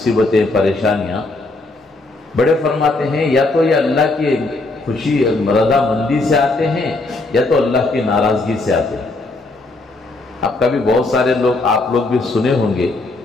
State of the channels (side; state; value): right; quieter; 3.1 dB